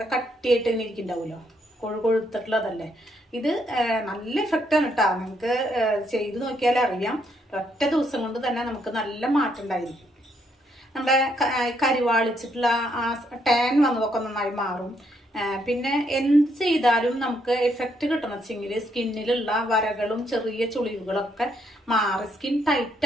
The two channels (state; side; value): normal; both; correlation 0.74